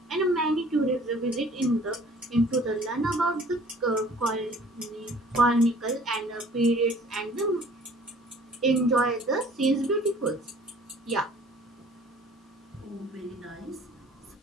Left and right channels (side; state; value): both; normal; correlation 0.52